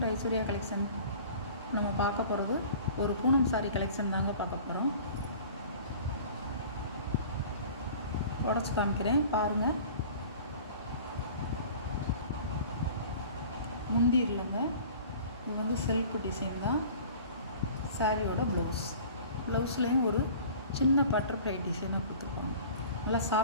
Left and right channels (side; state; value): both; inverted; correlation -0.44